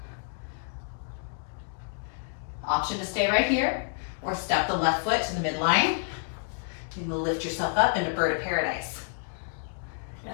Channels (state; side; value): silent; right; 59 dB below the other